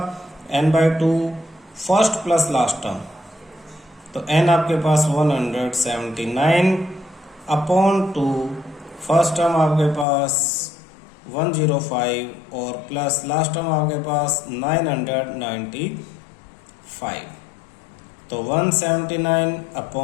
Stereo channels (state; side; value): drops out; right; at 10.1 s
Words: n/2 first plus last term, तो n आपके पास 179 अपॉन 2, फर्स्ट टर्म आपके पास 105 और प्लस लास्ट टर्म आपके पास 995, तो 179